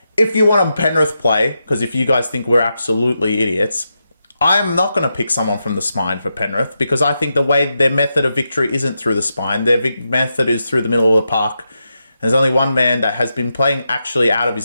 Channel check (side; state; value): both; inverted; correlation -0.86